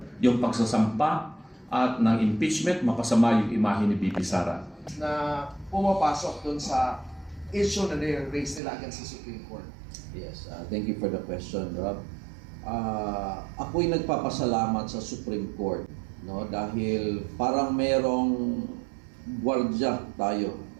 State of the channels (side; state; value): left; drops out; at 8.6 s